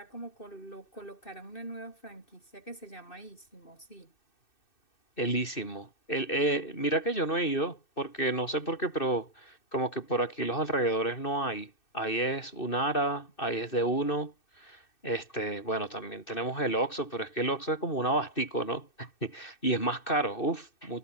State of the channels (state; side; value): late; right; 2.6 ms